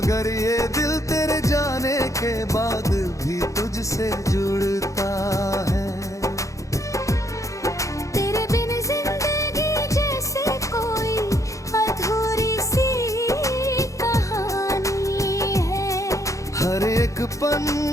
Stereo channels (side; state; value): right; late; 0.15 ms